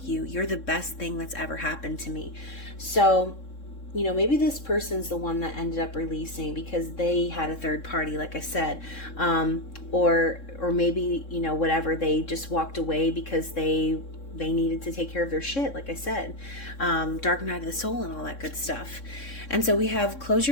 you. You're the best thing that's ever happened to me. So, you know, maybe this person's the one that ended up releasing because they had a third party, like I said, or maybe, you know, whatever, they just walked away because they needed to take care of their shit, like I said, dark night of the soul and all that good stuff. And so we have, close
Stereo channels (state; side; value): late; right; 3.6 ms